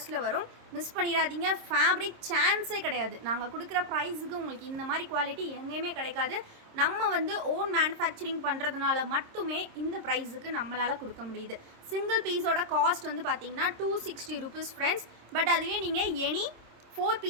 வரும். மிஸ் பண்ணிடாதீங்க. ஃபேப்ரிக் சான்ஸே கிடையாது. நாங்கள் கொடுக்குற ப்ரைஸுக்கு உங்களுக்கு இந்த மாதிரி குவாலிட்டி எங்கேயுமே கிடைக்காது. நம்ம வந்து ஓன் மேனுஃபேக்சரிங் பண்ணுறதுனால மட்டுமே இந்த ப்ரைஸுக்கு நம்மளால் கொடுக்க முடியுது. சிங்கிள் பீஸோட காஸ்ட் வந்து பார்த்தீங்கன்னா 260 ருபீஸ் ஃப்ரெண்ட்ஸ். பட் அதுவே நீங்கள் எனி 4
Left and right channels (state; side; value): late; left; 26 ms